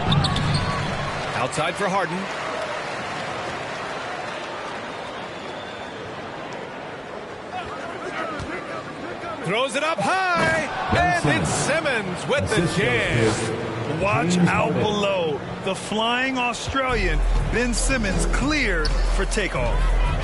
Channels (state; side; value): identical; both; correlation 1.00